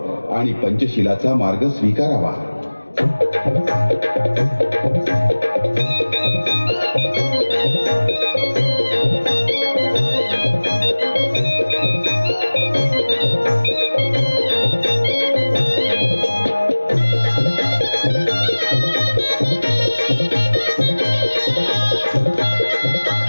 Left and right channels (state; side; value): inverted; both; correlation -1.00